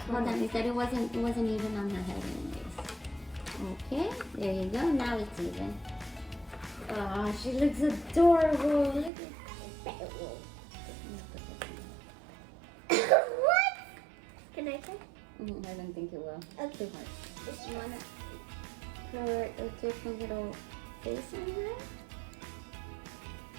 Hold on, off. you said it wasn't even on her head anyways. Okay, there you go. Now it's even. Oh, she looks adorable. Look at that. What? Can I try? I don't think it will. Okay. Too hard. Just want to put a different little face on here.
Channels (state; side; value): drops out; left; at 9.1 s